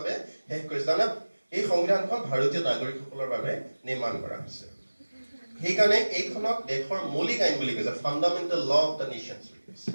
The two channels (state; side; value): inverted; both; correlation -1.00